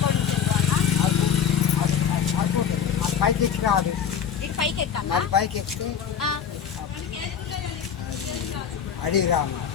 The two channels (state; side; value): quieter; right; 7.9 dB